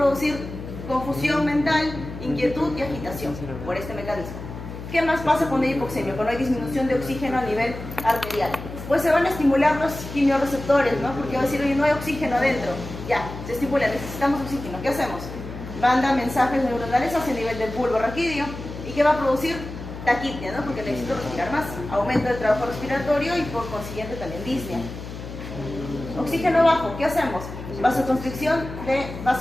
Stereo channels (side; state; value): left; noise; hum, 10 dB below the sound